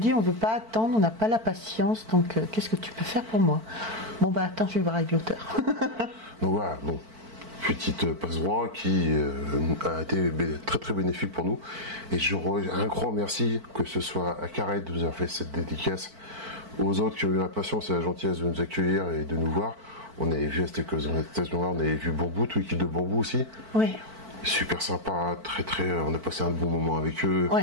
on ne veut pas attendre, on n'a pas la patience, donc qu'est-ce que tu peux faire pour moi? Bon, bah attends, je vais voir avec l'auteur. Donc voilà, bon, petite passe-droit qui a été très très bénéfique pour nous. Et un grand merci, que ce soit à Carrette de nous avoir fait cette dédicace, aux autres qui ont eu la patience et la gentillesse de nous accueillir et de nous voir. On avait vu à cette occasion-là, on avait vu Bambou, toute l'équipe de Bambou aussi. Oui. Super sympa, très très. On a passé un bon moment avec eux.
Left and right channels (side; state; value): left; late; 4.5 ms